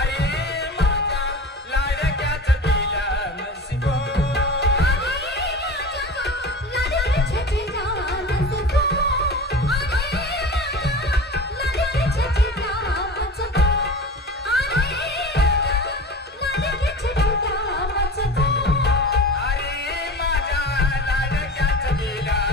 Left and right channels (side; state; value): both; normal; correlation 0.34